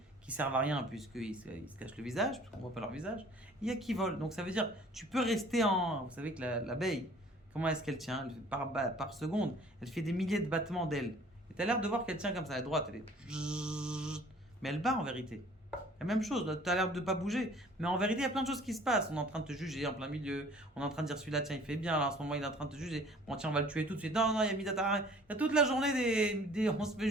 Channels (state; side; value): normal; both; correlation 0.52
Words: qui servent à rien puisqu'ils se cachent le visage, puisqu'on ne voit pas leur visage. Il y a qui volent. Donc ça veut dire, tu peux rester en... Vous savez que l'abeille, comment est-ce qu'elle tient? Par seconde, elle fait des milliers de battements d'ailes. Et tu as l'air de voir qu'elle tient comme ça, à droite, elle est... Mais elle bat en vérité. La même chose, tu as l'air de ne pas bouger. Mais en vérité, il y a plein de choses qui se passent. On est en train de te juger en plein milieu. On est en train de dire celui-là, tiens, il fait bien. Là, en ce moment, il est en train de te juger. Bon, tiens, on va le tuer tout de suite. Non, non, il y a Midatara. Il y a toute la journée on se fait